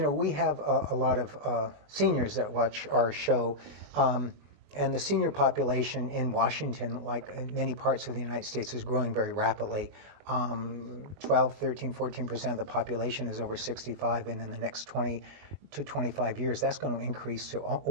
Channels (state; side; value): late; left; 21 ms